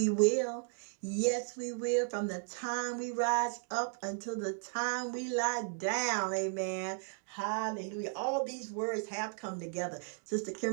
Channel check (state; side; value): silent; left; 54 dB below the other